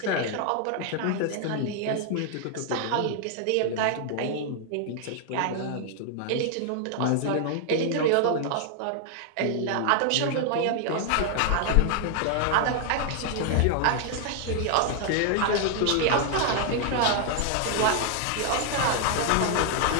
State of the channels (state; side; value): different; both; correlation 0.00